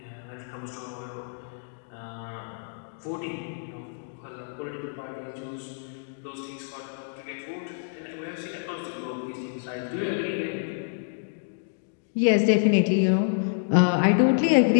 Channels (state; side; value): silent; right; digital silence